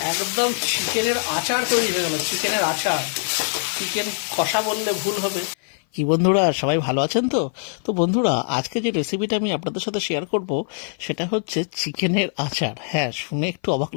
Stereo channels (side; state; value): right; silent; 58 dB below the other